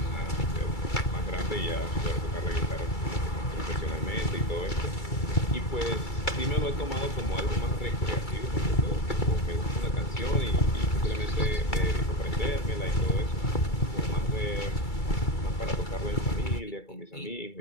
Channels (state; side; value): late; right; 2.3 ms